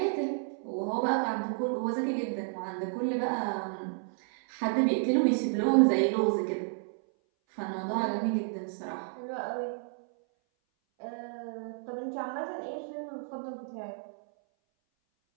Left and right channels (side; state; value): left; silent; 57 dB below the other